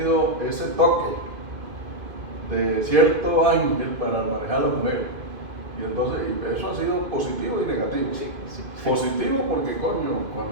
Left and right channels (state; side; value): late; left; 2.5 ms